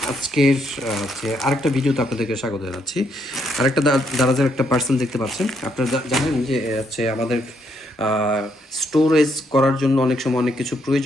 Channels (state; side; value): normal; both; correlation 0.74